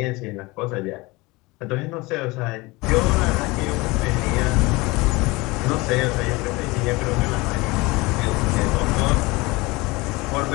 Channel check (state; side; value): quieter; right; 23.2 dB